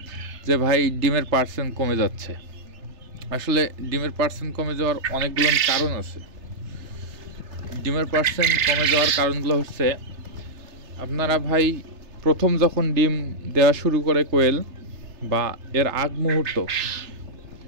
যে ভাই ডিমের পার্সেন্ট কমে যাচ্ছে। আসলে ডিমের পার্সেন্ট কমে যাওয়ার অনেকগুলো কারণ আছে। ডিমের পার্সেন্ট কমে যাওয়ার কারণগুলো হচ্ছে, আপনারা ভাই প্রথম যখন ডিম দেওয়া শুরু করে কোয়েল বা এর আগ মুহূর্ত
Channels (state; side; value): late; left; 3.3 ms